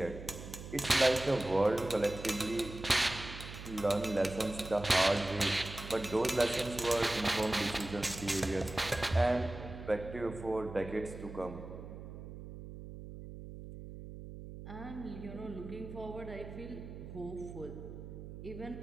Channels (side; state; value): right; noise; hum, 12 dB below the sound